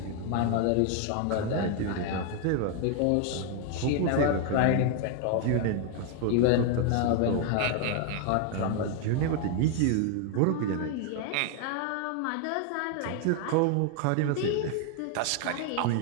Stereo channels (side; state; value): both; different; correlation 0.00